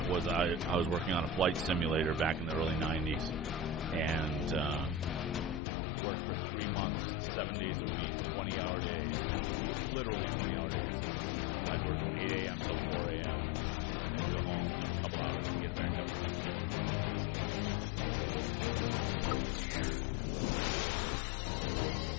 I was working on a flight simulator back in the early 90s, and worked for 3 months, 7 days a week, 20-hour days, and literally 20-hour days. I'd work from 8 a.m. till 4 a.m. and then go home, sleep a couple hours, and get it back up and do it again.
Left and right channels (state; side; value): drops out; right; at 5.6 s